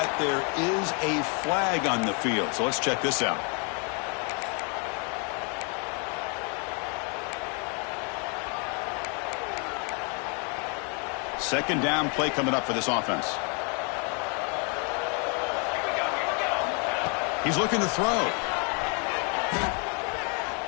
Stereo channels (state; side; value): quieter; right; 36.7 dB